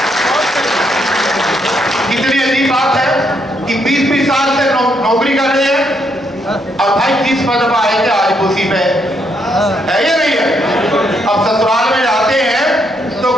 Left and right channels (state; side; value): normal; both; correlation 0.75